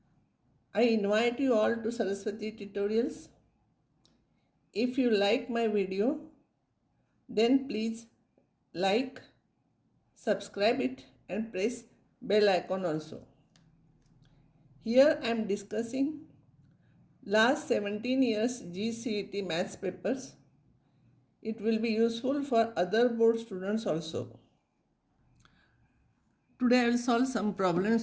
I invite you all to Saraswati Tutorials. If you like my video, then please like, subscribe it and press bell icon also. Here I am discussing last 17 years C.E.T maths papers. It will be useful for other board students also. Today I will solve some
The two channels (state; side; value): identical; both; correlation 1.00